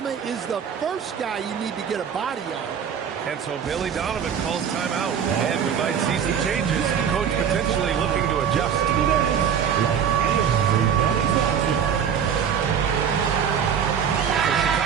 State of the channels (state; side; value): quieter; left; 7.9 dB